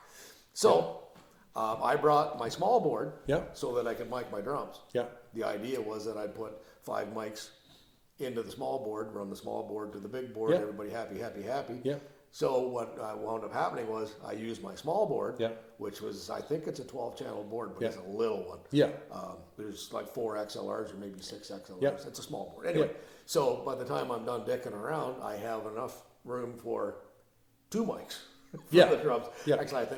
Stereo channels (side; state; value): both; identical; correlation 1.00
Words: So I brought my small board. Yeah. So that I could mic my drums. Yeah. The idea was that I'd put 5 mics into the small board, run the small board to the big board, Yeah. everybody happy, happy, happy. Yeah. So what wound up happening was I used my small board, Yeah. which was, I think it's a 12-channel board, but Yeah. it's a little one. Yeah. There's like 4 XLRs or maybe 6 XLRs. Yeah. It's a small board. Anyway, Yeah. so by the time I'm done dicking around, I have enough room for 2 mics for Yeah. the drums. Yeah. Actually, I